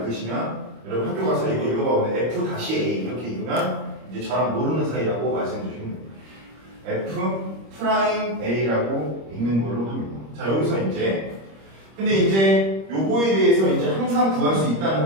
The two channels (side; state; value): left; late; 26 ms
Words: 읽으시면 여러분 학교 가서 이거 읽어보면 F-A 이렇게 읽으면 이제 저랑 모르는 사이라고 말씀해 주시면 됩니다. F'A라고 읽는 걸로 합니다. 자, 여기서 근데 이제 요거에 대해서 이제 항상 구할 수 있다는